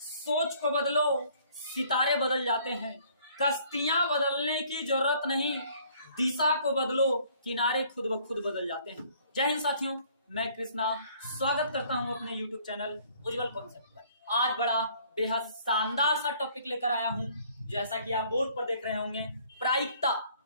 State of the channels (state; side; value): inverted; both; correlation -0.59